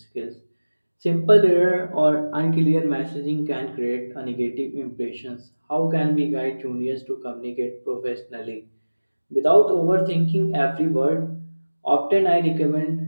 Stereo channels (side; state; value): both; inverted; correlation -1.00